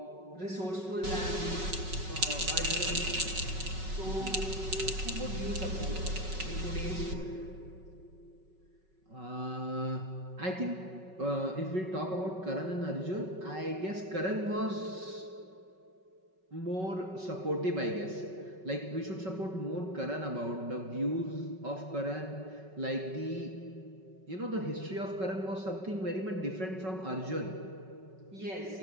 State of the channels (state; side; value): late; left; 5.3 ms